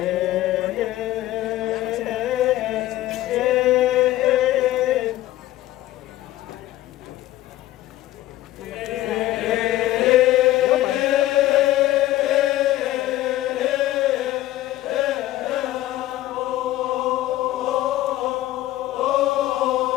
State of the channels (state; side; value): quieter; right; 15.1 dB